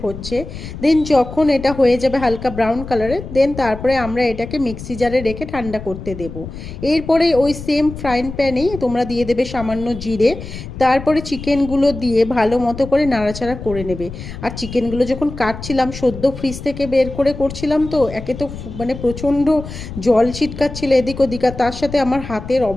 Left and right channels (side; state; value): left; noise; rumble, 11 dB below the sound